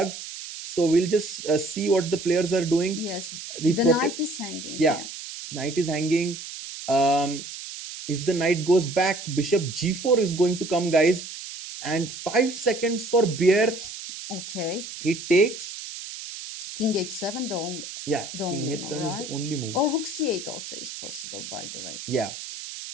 So we'll just see what the players are doing. Yes, The the prote- knight is hanging. Yeah, knight is hanging. If the knight goes back, bishop g4 is going to come, guys. And 5 seconds for Bjerre. Okay. He takes. King h7, the only. Yeah, The king only h7 move, is the right? only move. Or rook c8 also is possible, by the way. Yeah.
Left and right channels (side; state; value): right; noise; hiss, 10 dB below the sound